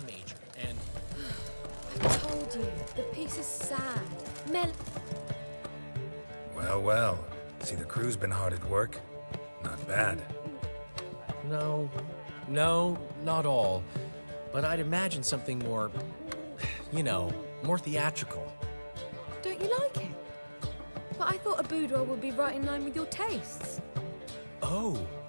major, and I told you, the piece is sad. Well, well. See, the crew's been hard at work. Not bad. no, not all. But I'd imagine something more, more theatrical. Don't you like it? But I thought a boudoir would be right in line with your tastes. Oh,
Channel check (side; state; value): both; inverted; correlation -1.00